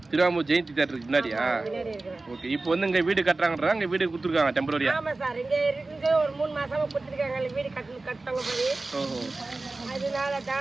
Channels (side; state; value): left; quieter; 3.3 dB